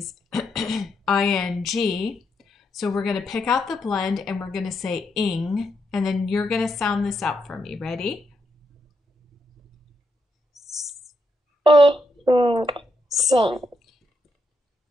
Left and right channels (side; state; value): both; normal; correlation 0.81